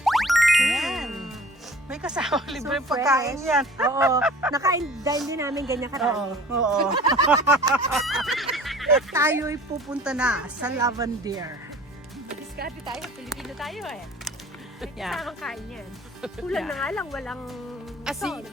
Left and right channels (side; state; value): both; normal; correlation 0.46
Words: Yan. May kasama libre So pagkain fresh. yan. Oo. Nakain din namin ganyan karami. Oo. At tayo'y pupunta na sa Lavender. Diskarte tayo, Pilipino tayo eh. Yeah. Kasamang kain yan. Kulang na nga lang, walang Asin. salt.